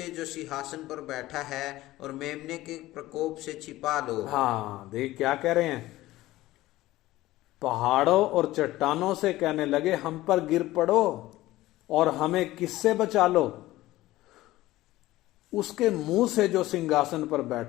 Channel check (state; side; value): quieter; right; 16.8 dB